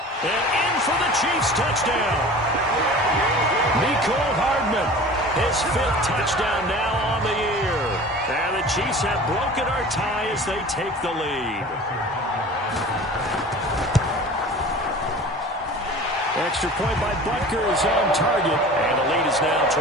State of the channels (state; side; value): normal; both; correlation 0.40